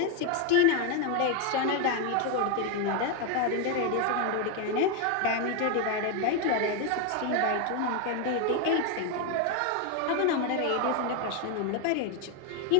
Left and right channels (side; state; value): both; different; correlation 0.02